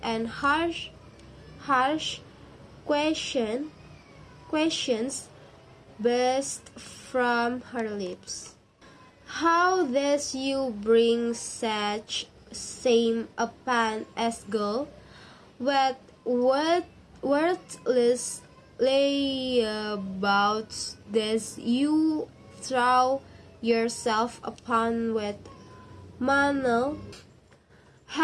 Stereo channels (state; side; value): identical; both; correlation 1.00